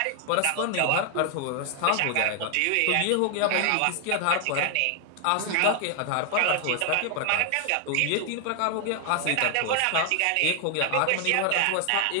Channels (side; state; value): both; different; correlation 0.00